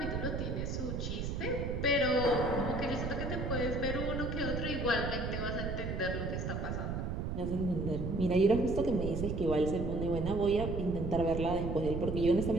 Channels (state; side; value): noise; right; rumble, 3 dB below the sound